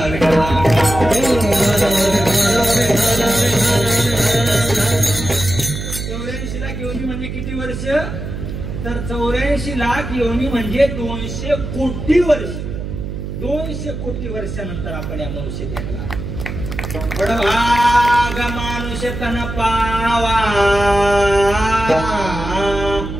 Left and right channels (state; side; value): noise; right; hum, 6 dB below the sound